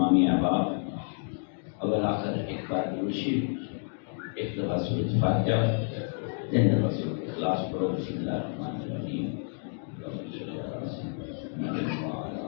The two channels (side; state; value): right; silent; 58 dB below the other